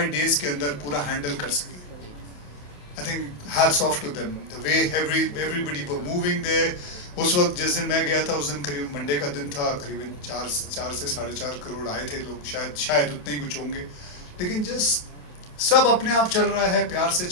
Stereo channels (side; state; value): right; late; 28 ms